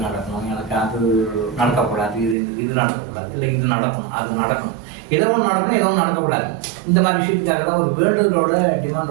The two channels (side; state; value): left; drops out; at 2.4 s